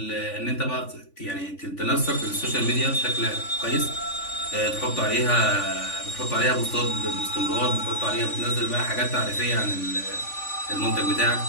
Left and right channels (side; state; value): right; late; 3.5 ms